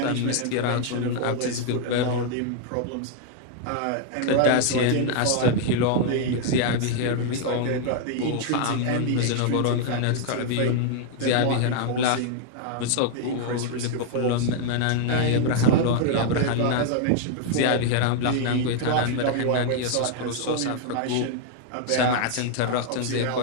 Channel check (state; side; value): different; both; correlation 0.00